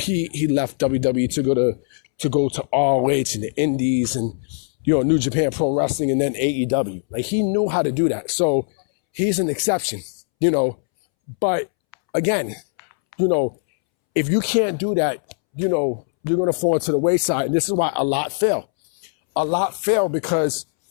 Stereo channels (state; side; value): silent; right; 65 dB below the other